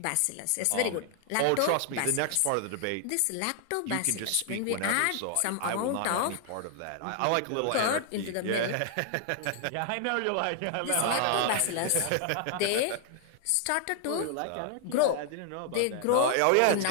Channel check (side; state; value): both; different; correlation 0.00